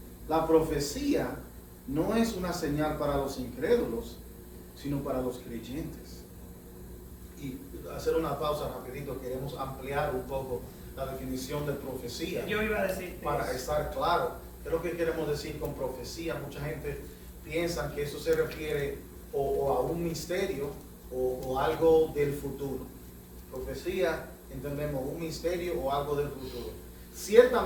la profecía no es una señal para los incrédulos, sino para los creyentes. Y hacer una pausa rapidito, queremos ampliar un poco la definición de profecía. Yo iba a decir para estar claro. ¿Qué es lo que queremos decir con profecía? Mucha gente piensa que eso se refiere o a un misterio o algo del futuro. Profecía, entendemos un misterio o algo del futuro.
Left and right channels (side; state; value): both; identical; correlation 1.00